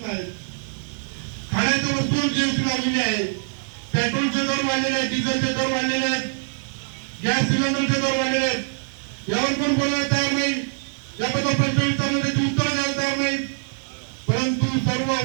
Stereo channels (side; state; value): left; silent; 61 dB below the other